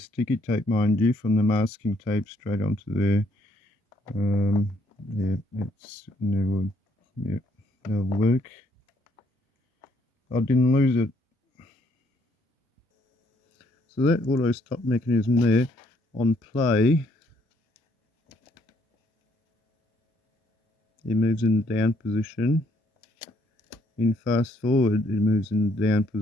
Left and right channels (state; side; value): normal; both; correlation 0.68